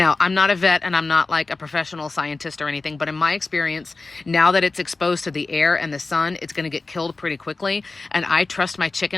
I'm not a vet and I'm not like a professional scientist or anything, but in my experience, now that it's exposed to the air and the sun, it's going to get killed pretty quickly. And I trust my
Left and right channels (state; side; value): quieter; right; 3.6 dB